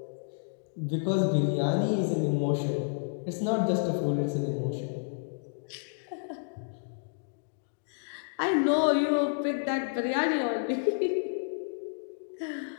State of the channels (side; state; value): right; silent; digital silence